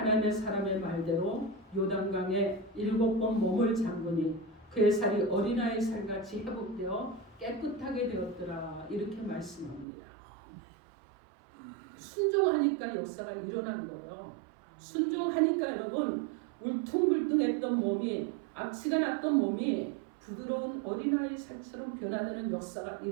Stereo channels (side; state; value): left; drops out; at 9.9 s